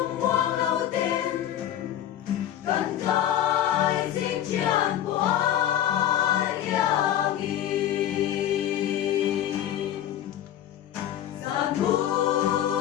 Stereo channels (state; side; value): quieter; right; 11.3 dB